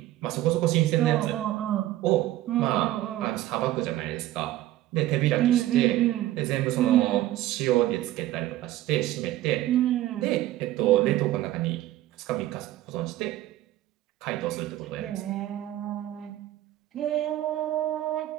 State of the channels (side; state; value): left; quieter; 14.6 dB